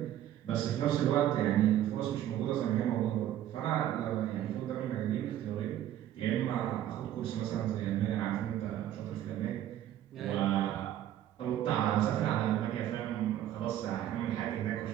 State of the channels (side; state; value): left; quieter; 11.9 dB